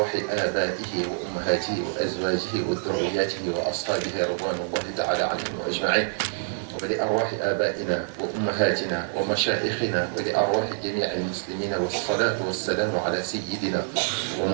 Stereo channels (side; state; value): left; silent; digital silence